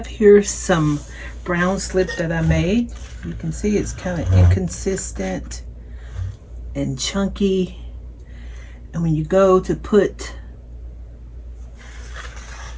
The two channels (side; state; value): both; identical; correlation 1.00